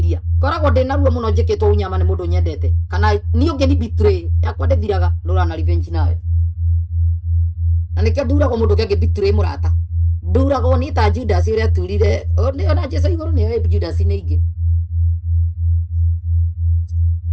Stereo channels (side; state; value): both; identical; correlation 1.00